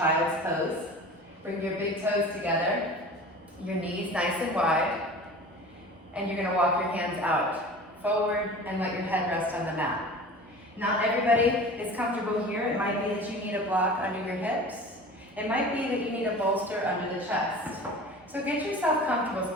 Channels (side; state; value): both; normal; correlation 0.39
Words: pose. Bring your big toes together, your knees nice and wide, and you're going to walk your hands out forward and let your head rest on the mat. Not everybody is comfortable here. It might be that you need a block under your hips. It might be that you need a bolster under the chest. So get yourself comfortable,